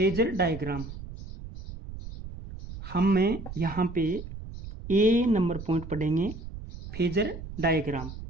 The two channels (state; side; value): noise; right; rumble, 11 dB below the sound